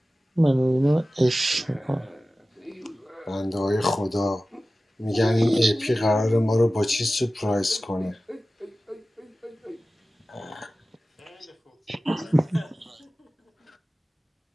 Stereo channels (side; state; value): both; normal; correlation 0.96